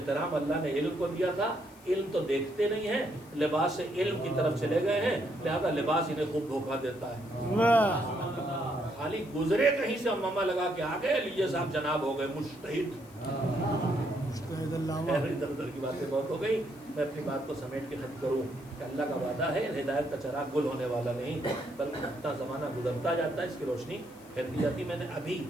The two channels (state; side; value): noise; left; hiss, 25 dB below the sound